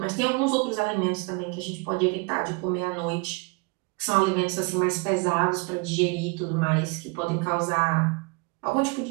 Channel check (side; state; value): left; quieter; 29.4 dB